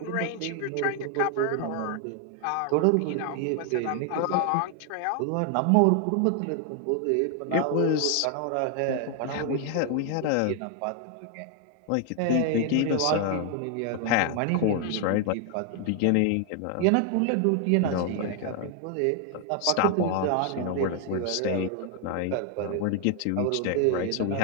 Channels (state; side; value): different; both; correlation 0.00